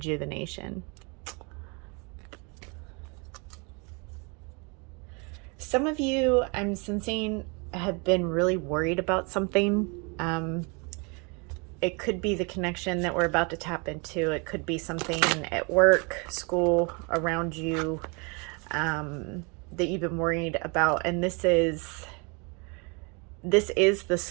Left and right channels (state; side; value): quieter; left; 31.8 dB